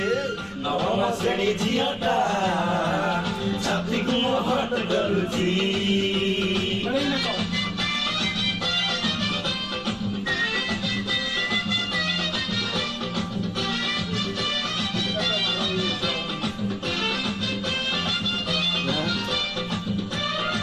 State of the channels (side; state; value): both; identical; correlation 1.00